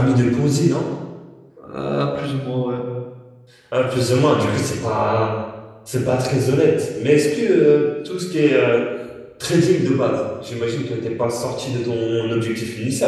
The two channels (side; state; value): both; identical; correlation 1.00